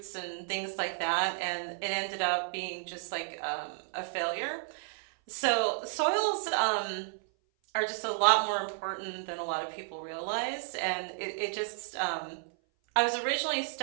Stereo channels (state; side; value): silent; left; 56 dB below the other